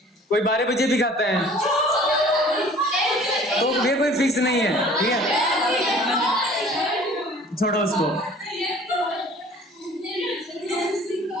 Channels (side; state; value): both; normal; correlation 0.50